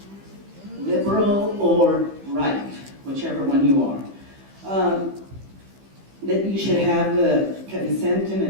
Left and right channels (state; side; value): late; left; 15 ms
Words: Liberal or right, whichever one you are. That you should have the consent and